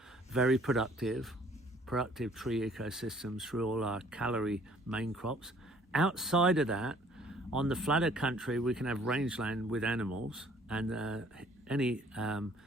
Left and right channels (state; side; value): normal; both; correlation 0.58